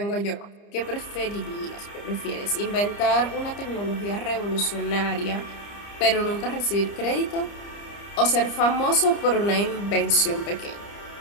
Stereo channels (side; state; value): right; late; 30 ms